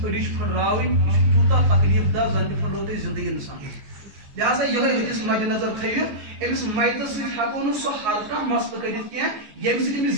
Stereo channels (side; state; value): left; late; 14 ms